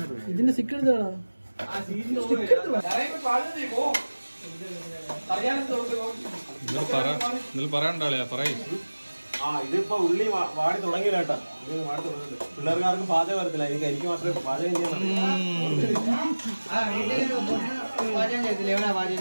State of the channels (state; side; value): inverted; both; correlation -1.00